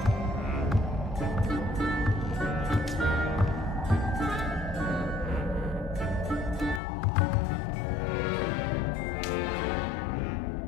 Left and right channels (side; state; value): right; drops out; at 6.8 s